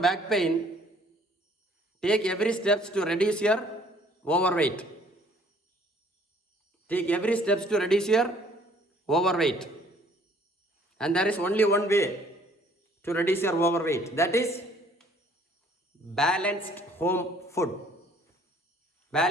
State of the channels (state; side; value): normal; both; correlation 0.58